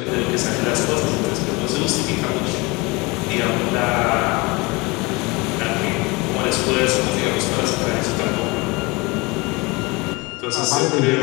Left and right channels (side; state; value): right; quieter; 25.3 dB